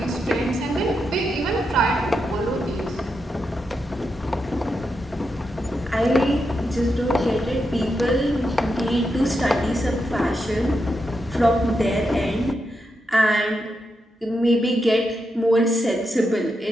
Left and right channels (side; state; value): both; normal; correlation 0.85